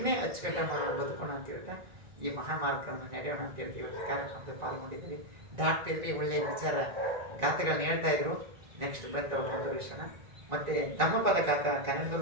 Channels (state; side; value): late; left; 1.9 ms